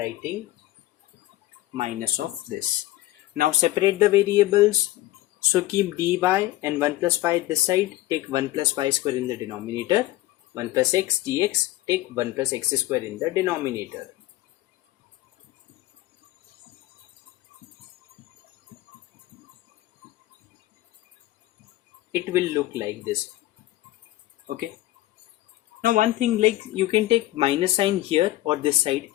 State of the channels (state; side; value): quieter; right; 16.4 dB